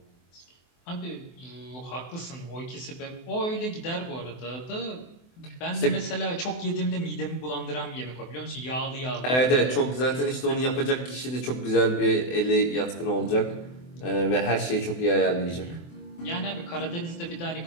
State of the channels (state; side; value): late; right; 24 ms